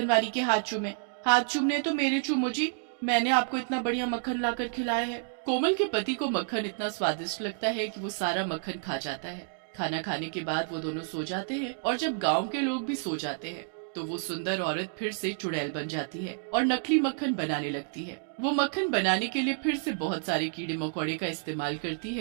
वाली के हाथ चूमे। हाथ चूमने तो मेरे चूमो जी, मैंने आपको इतना बढ़िया मक्खन लाकर खिलाया है। कोमल के पति को मक्खन इतना स्वादिष्ट लगता है कि वो सारा मक्खन खा जाता है। खाना खाने के बाद वो दोनों सो जाते हैं, और जब गांव के लोग भी सो जाते हैं तो वो सुंदर औरत फिर से चुड़ैल बन जाती है और नकली मक्खन बनाने लगती है। वो मक्खन बनाने के लिए फिर से बहुत सारे कीड़े मकोड़े का इस्तेमाल करती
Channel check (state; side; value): silent; left; digital silence